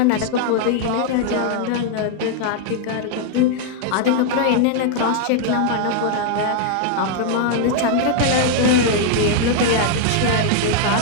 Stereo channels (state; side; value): different; both; correlation 0.00